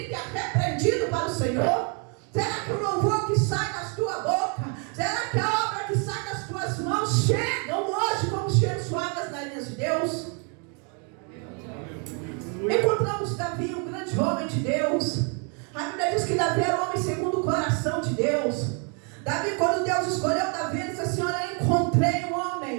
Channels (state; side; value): quieter; left; 37.3 dB